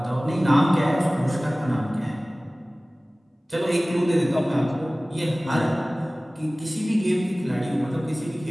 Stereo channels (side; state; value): both; normal; correlation 0.98